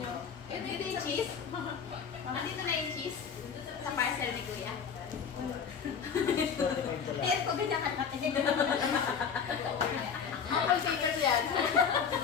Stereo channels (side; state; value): right; quieter; 6.8 dB